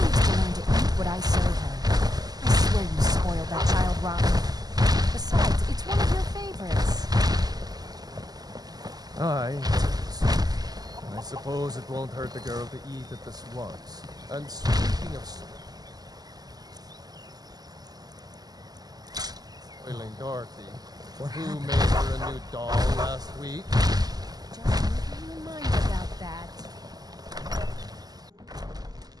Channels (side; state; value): left; late; 0.19 ms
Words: to learn to eat what I serve her. I swear you spoiled that child rotten. Besides, it's one of your favorites. Aye. I suppose it won't hurt the girl to eat at this once. And speaking of spoiling Dorothy, who made her a new doll last week? Just keep you in mind about that.